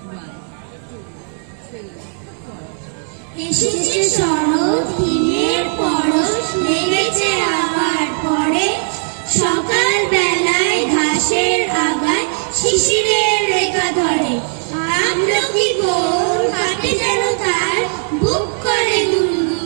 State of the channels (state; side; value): silent; left; 68 dB below the other